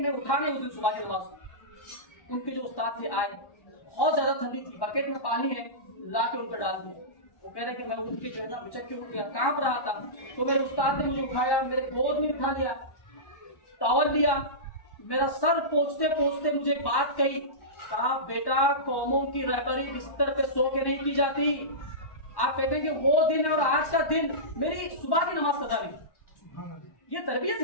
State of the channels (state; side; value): late; right; 1.1 ms